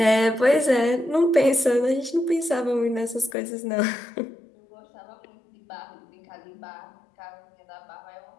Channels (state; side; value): drops out; right; at 3.4 s